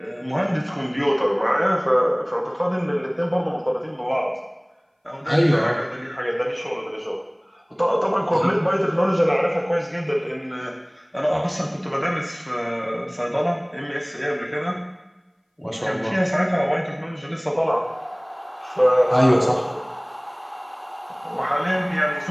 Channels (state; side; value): identical; both; correlation 1.00